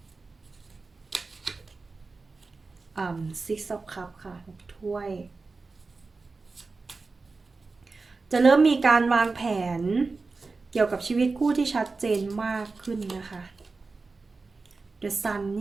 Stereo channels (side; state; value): left; quieter; 4.0 dB